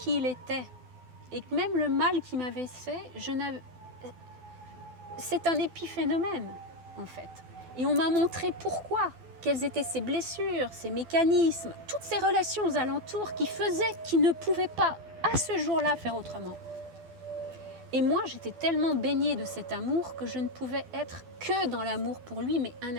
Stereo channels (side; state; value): left; late; 12 ms